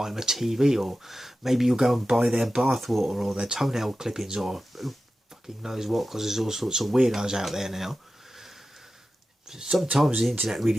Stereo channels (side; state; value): both; normal; correlation 0.93